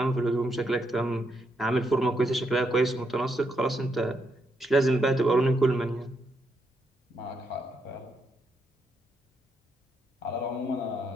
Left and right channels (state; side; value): normal; both; correlation 0.79